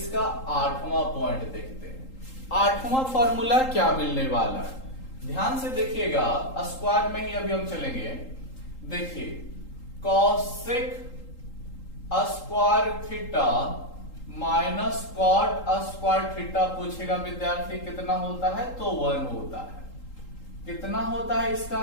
8वां पॉइंट देखते हैं। 8वां फॉर्मूला क्या मिलने वाला है, ध्यान से देखिएगा, स्क्वायर में ही अभी हम चलेंगे। देखिए cosec square theta minus cot square theta पूछेगा विद्यार्थी, कितना होता है, तो 1 होता है। कितना होता है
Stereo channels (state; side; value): late; right; 3.8 ms